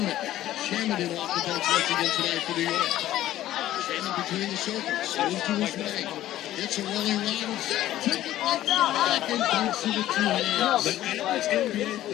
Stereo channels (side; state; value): right; quieter; 13.8 dB